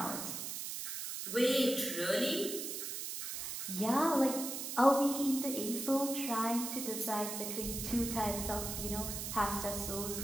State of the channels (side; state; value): right; noise; hiss, 5 dB below the sound